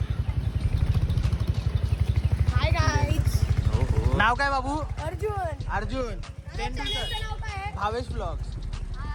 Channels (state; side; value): identical; both; correlation 1.00